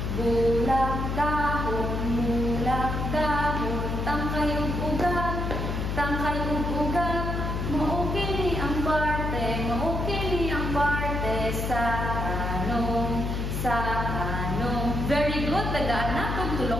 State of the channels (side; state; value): left; noise; hum, 2 dB below the sound